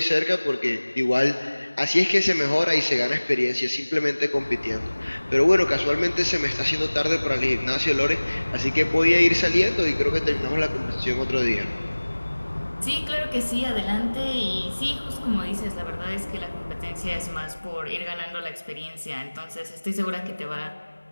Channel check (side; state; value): both; inverted; correlation -1.00